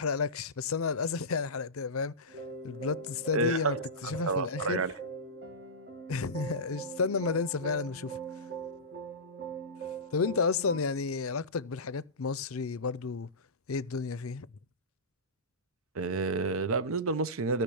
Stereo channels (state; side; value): normal; both; correlation -0.18